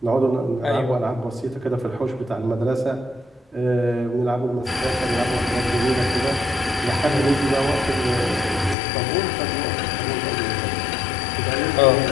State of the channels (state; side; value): drops out; right; at 8.8 s